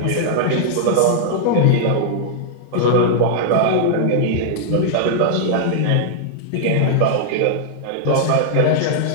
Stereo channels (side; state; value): both; different; correlation -0.01